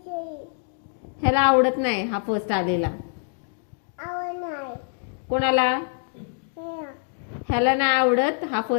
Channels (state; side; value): silent; right; 59 dB below the other